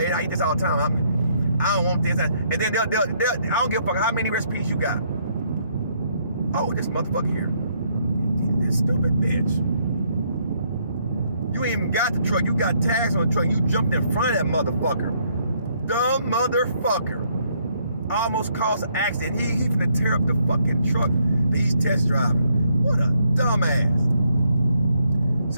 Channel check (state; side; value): inverted; both; correlation -0.71